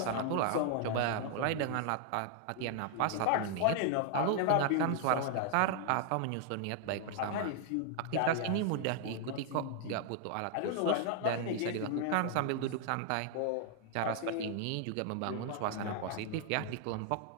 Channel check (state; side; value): different; both; correlation 0.00